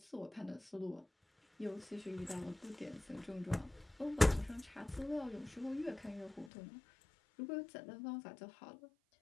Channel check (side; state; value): right; drops out; at 6.5 s